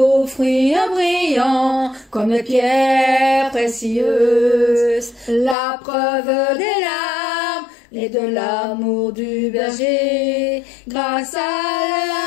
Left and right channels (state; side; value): drops out; right; at 5.6 s